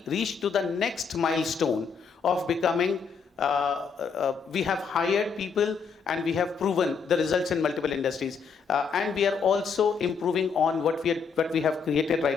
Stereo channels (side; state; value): right; quieter; 5.8 dB